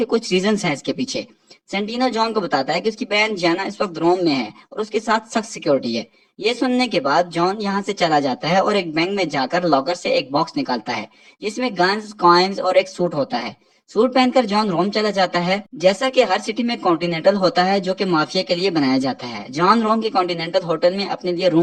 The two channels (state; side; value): identical; both; correlation 1.00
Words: कुछ रीजंस हैं इसके पीछे। सेंटिनो जॉन को बताता है कि उसकी बहन जियाना इस वक्त रोम में है और उसके साथ सख्त सिक्योरिटी है। ये सुनने के बाद जॉन यहाँ से चला जाता है और एक बैंक में जाकर लॉकर से एक बॉक्स निकालता है जिसमें गन्स, कॉइन्स और एक सूट होता है। सूट पहनकर जॉन रोम चला जाता है। जैसा कि हर सिटी में कॉन्टिनेंटल होता है जो कि माफिया के लिए बनाया जाता है, जॉन रोम के कॉन्टिनेंटल होटल में अपने लिए